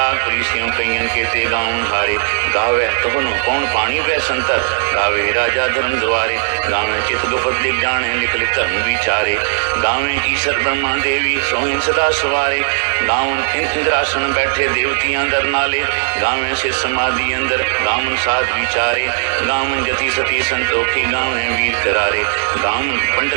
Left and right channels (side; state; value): left; silent; 56 dB below the other